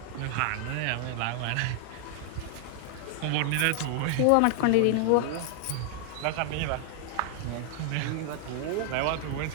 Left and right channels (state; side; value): different; both; correlation 0.00